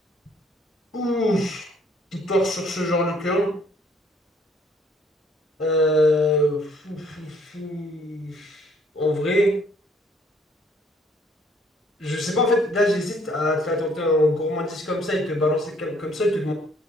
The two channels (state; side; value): normal; both; correlation 0.62